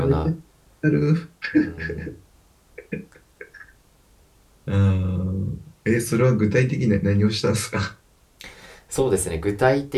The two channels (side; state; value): both; identical; correlation 1.00